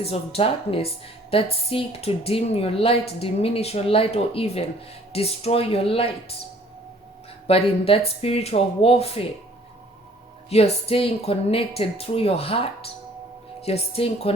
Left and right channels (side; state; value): both; normal; correlation 0.56